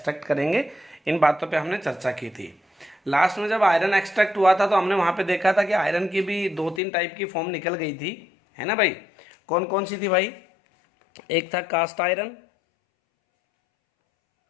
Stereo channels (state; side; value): drops out; right; at 6.8 s